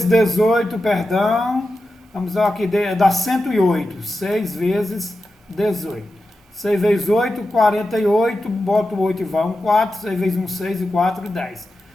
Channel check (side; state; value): both; normal; correlation 0.91